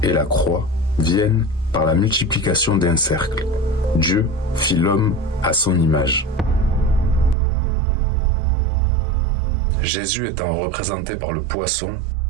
et la croix viennent par la multiplication d'un cercle. Dieu fit l'homme à son image. Jésus étant représenté par le poisson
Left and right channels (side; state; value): left; drops out; at 7.4 s